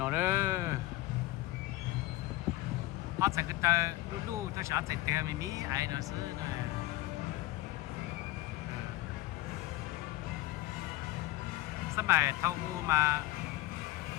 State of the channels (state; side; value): quieter; right; 17.3 dB